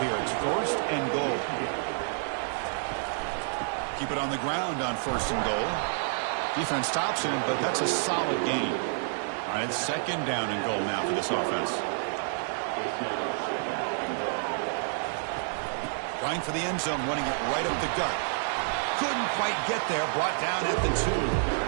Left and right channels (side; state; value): left; silent; digital silence